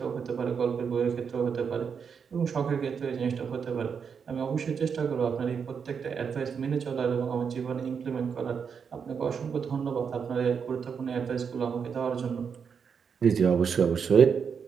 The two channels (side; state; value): left; quieter; 6.5 dB